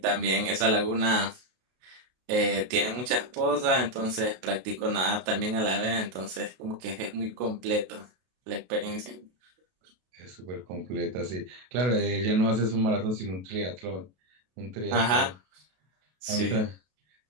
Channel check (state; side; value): late; left; 32 ms